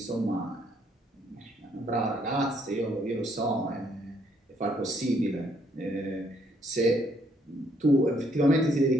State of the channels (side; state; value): both; normal; correlation 0.69